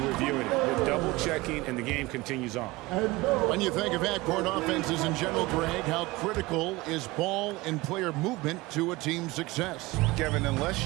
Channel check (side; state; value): left; quieter; 21.2 dB